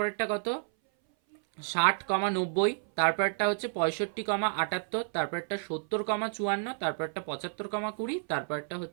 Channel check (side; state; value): left; silent; 57 dB below the other